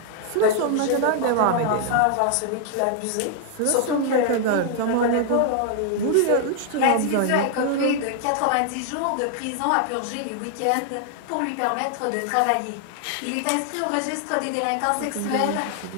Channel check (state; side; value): different; both; correlation 0.00